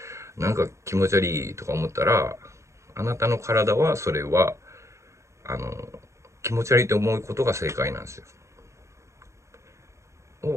なんか気持ち悪いとか思ったら、あなたの体はそれは気持ち悪いと思うことが正解なんです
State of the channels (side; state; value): left; late; 0.14 ms